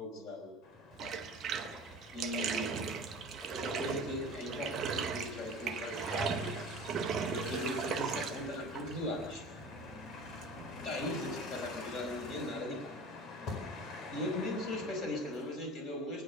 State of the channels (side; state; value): both; normal; correlation 0.39